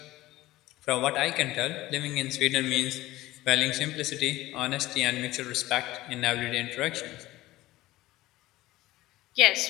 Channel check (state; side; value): quieter; right; 17.2 dB